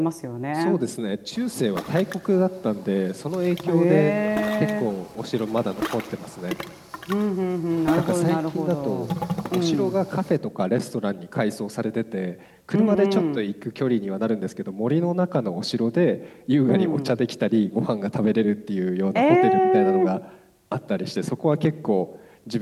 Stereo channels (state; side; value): identical; both; correlation 1.00